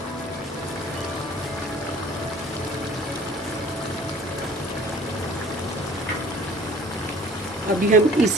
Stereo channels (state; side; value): normal; both; correlation 0.51